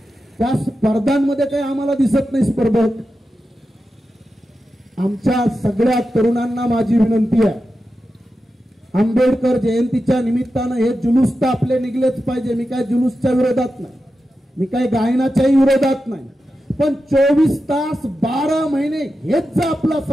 त्या स्पर्धांमध्ये काही आम्हाला दिसत नाही स्पर्धक। आमच्या सगळ्या तरुणांना माझी विनंती आहे, आंबेडकर जयंतीच्या निमित्तानं हे जुलूस तर आपले निघलेच पाहिजे। मी काय जुलूसच्या विरोधात नाही, मी काय गायनाच्याही विरोधात नाही, पण 24 तास 12 महिने हेच जर आपला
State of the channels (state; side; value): normal; both; correlation 0.91